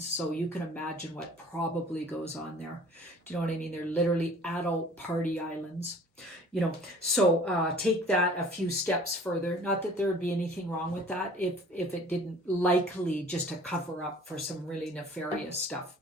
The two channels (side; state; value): both; normal; correlation 0.49